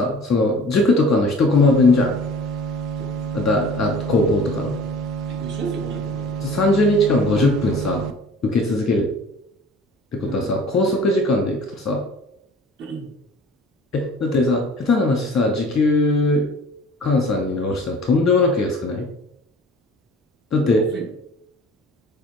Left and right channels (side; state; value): both; normal; correlation 0.46